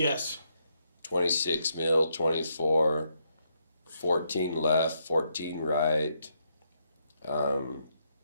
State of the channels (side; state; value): both; inverted; correlation -0.78